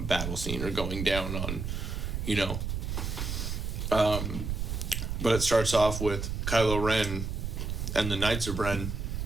battle scene or going down on, but it starts off with Kylo Ren and the Knights of Ren,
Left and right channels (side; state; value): right; noise; rumble, 3 dB below the sound